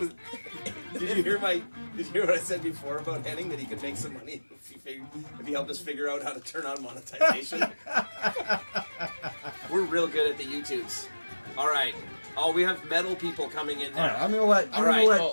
did you hear what I said before about Henning, that he could make some money if he helped us figure out how to turn on monetization? We're real good at the YouTubes. All right. Oh, we have metal people coming in now. All right, I'm gonna let. All right.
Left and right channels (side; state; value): both; inverted; correlation -1.00